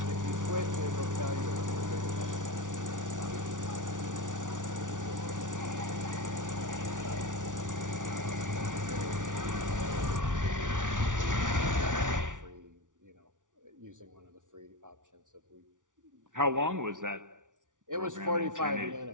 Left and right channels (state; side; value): late; left; 0.87 ms